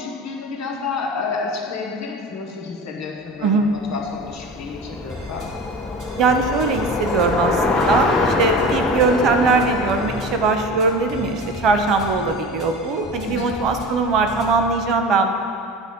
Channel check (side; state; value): both; normal; correlation 0.33